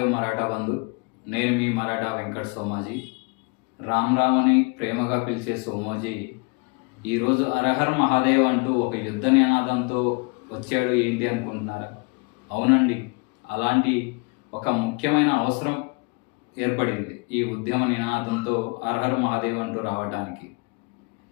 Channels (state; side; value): quieter; right; 31.6 dB